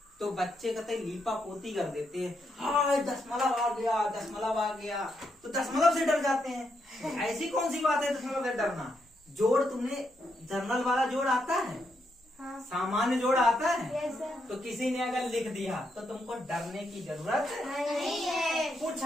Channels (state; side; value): normal; both; correlation 0.80